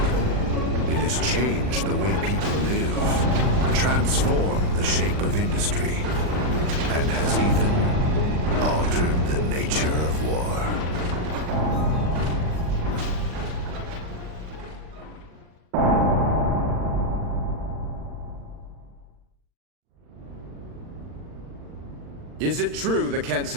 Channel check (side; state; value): left; late; 39 ms